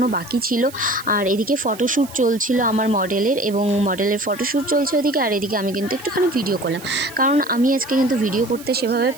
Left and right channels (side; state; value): right; noise; hiss, 18 dB below the sound